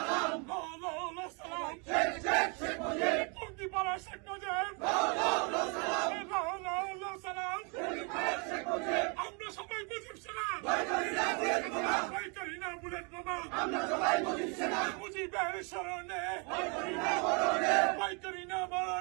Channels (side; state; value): left; quieter; 33.8 dB